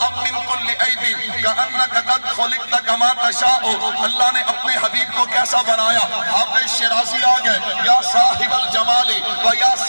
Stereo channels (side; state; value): both; inverted; correlation -1.00